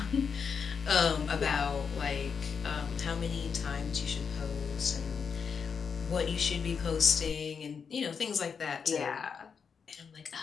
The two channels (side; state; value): right; quieter; 6.2 dB